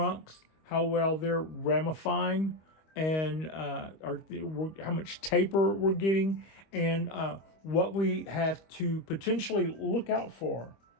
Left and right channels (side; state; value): right; late; 25 ms